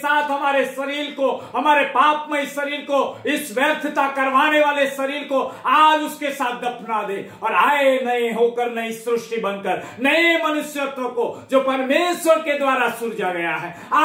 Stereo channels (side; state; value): both; identical; correlation 1.00